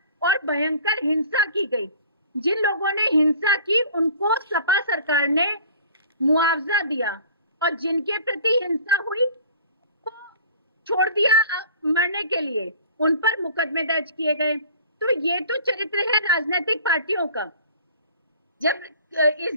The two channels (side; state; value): both; inverted; correlation -0.48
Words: और भयंकर हिंसा की गई। जिन लोगों ने हिंसा की उनको सपा सरकार ने मुआवजा दिया और जिनके प्रति हिंसा हुई को छोड़ दिया मरने के लिए, उन पर मुकदमे दर्ज किए गए। तो ये तो चरित्र है राजनीतिक पार्टियों का। जब